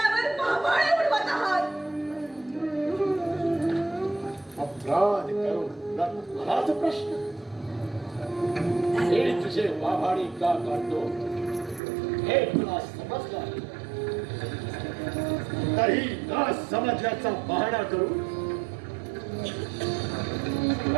भावाळे उडवत आहात. अपराध करून मलाच प्रश्न. हे तुझे वाभाडी का काढतो हे तुला समजलं आहे. तरी न समजल्याचा बहाणा करून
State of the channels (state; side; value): drops out; left; at 11.8 s